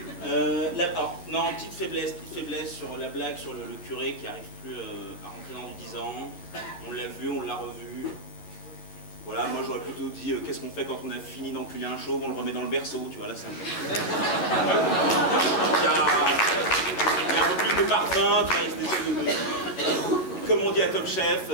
Alors, non, petite faiblesse sur la blague sur le curé qui n'arrive plus à rentrer dans du 10 ans. On l'a vu, on l'a revu. Voilà, moi j'aurais plutôt dit qu'est-ce qu'on fait quand on a fini d'enculer un chauve, on le remet dans le berceau, tu vois, là c'est un peu... Il y a un peu plus de parfum, tu vois, cette espèce de... Comme on dit à Top Chef,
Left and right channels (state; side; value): late; right; 11 ms